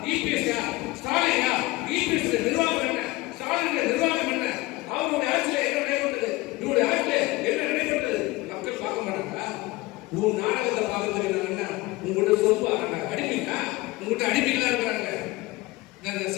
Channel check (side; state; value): right; quieter; 20.4 dB